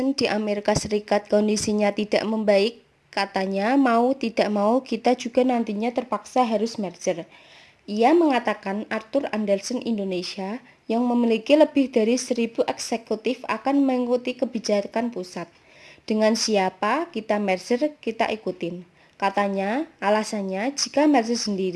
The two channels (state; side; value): identical; both; correlation 1.00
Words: di Amerika Serikat kondisinya tidak membaik, katanya mau tidak mau kita juga nantinya terpaksa harus merger. Ia mengatakan Arthur Andersen Indonesia yang memiliki lebih dari 1.000 eksekutif akan mengikuti kebijakan pusat. Dengan siapa kita merger, kita ikutin. Katanya, alasannya jika merger